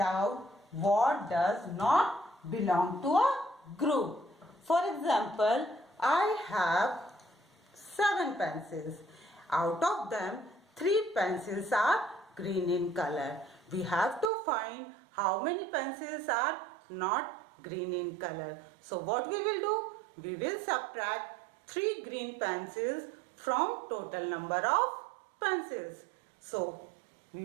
what does not belong to a group. For example, I have 7 pencils. Out of them, 3 pencils are green in color. We have to find how many pencils are not green in color. So what we will do? We will subtract 3 green pencils from total number of pencils. So we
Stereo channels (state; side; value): drops out; left; at 14.3 s